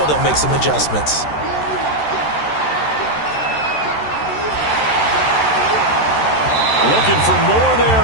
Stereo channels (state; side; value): late; right; 13 ms